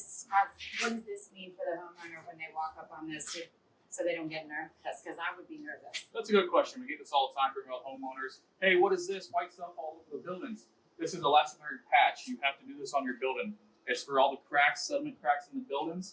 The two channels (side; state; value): both; identical; correlation 1.00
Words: have? What does this mean for the homeowner when they walk up on this, so they don't get nervous? Because I would be nervous. That's a good question. We get this all the time from homeowners. Hey, what is this white stuff all over the buildings? This is elastomeric patch. You have to do this on your building. It's for all the cracks, sediment cracks in the buildings.